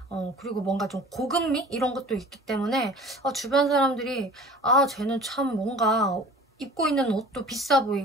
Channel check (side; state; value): both; normal; correlation 0.44